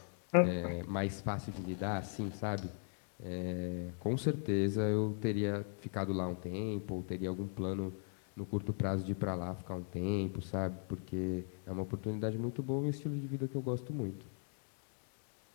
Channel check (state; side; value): silent; right; 52 dB below the other